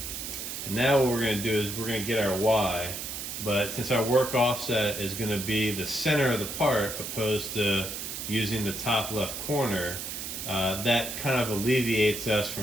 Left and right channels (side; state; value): right; noise; hiss, 6 dB below the sound